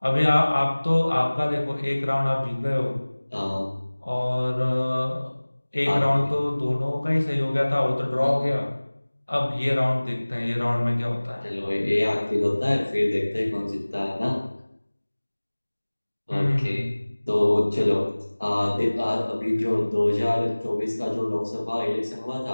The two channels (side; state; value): both; inverted; correlation -1.00